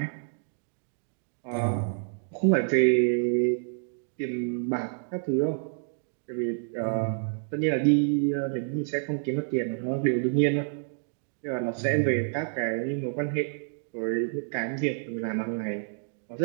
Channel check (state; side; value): silent; left; digital silence